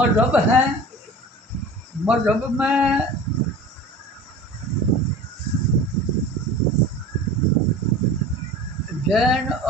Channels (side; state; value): both; normal; correlation 0.38